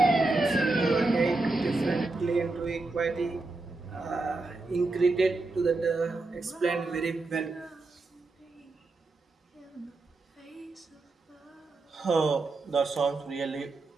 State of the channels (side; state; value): left; quieter; 3.3 dB